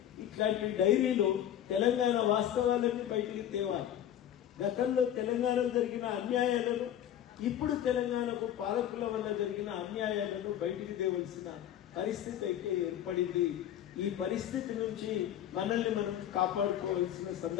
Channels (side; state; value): right; quieter; 10.9 dB